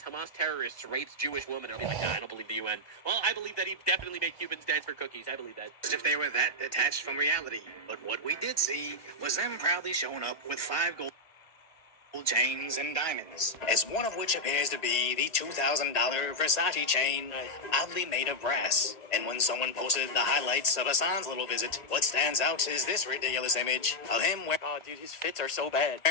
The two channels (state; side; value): late; right; 1.9 ms